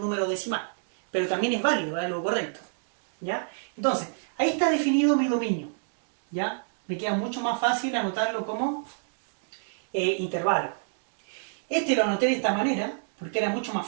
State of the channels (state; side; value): silent; left; digital silence